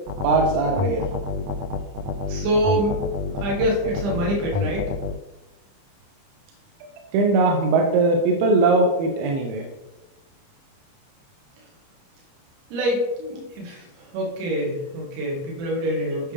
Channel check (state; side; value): late; left; 30 ms